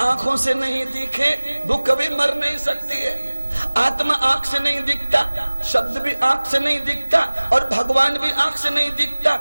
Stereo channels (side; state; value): both; inverted; correlation -1.00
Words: आंखों से नहीं दिखे वो कभी मर नहीं सकती है। आत्मा आंख से नहीं दिखता, शब्द भी आंख से नहीं दिखता और भगवान भी आंख से नहीं दिखता,